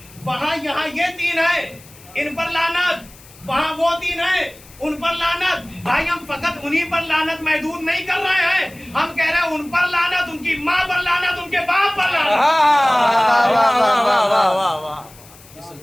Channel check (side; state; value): left; noise; hiss, 23 dB below the sound